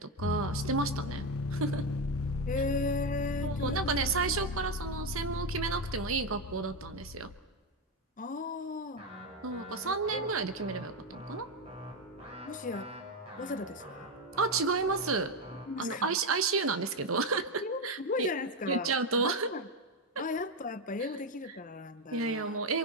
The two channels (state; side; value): normal; both; correlation 0.10